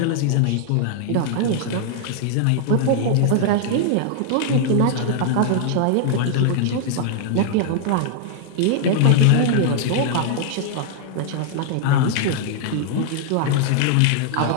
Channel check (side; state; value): both; different; correlation 0.00